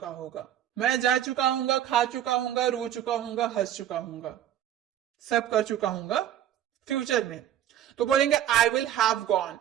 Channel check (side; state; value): left; quieter; 11.2 dB